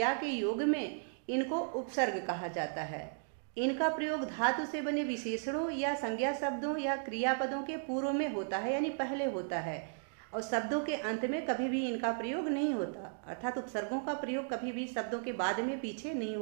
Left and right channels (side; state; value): left; silent; digital silence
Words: के योग में इनको उपसर्ग कहा जाता है। इनका प्रयोग धातु से बने विशेषणों या संज्ञा शब्दों या क्रियापदों के पूर्व में होता है, यानी पहले होता है, और शब्दों के अंत में कभी भी इनका प्रयोग नहीं होता। अर्थात उपसर्गों का प्रयोग कभी भी शब्दों के बाद में पीछे नहीं